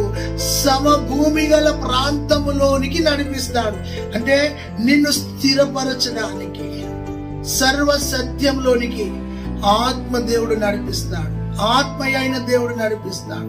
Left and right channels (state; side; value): identical; both; correlation 1.00